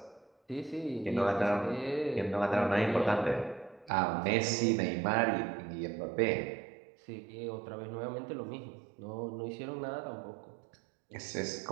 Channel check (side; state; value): left; drops out; at 3.9 s